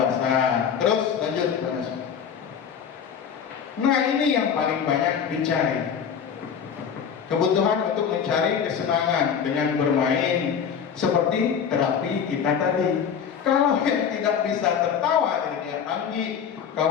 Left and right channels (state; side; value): quieter; right; 7.5 dB